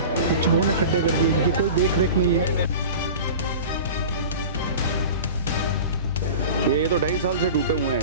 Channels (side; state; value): both; inverted; correlation -0.35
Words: चूहों ने खड्डे कर दिए, इनकी कोई देख रेख नहीं है। ये तो 2.5 साल से टूटे हुए